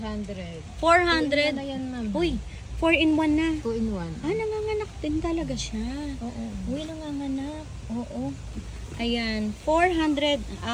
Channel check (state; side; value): identical; both; correlation 1.00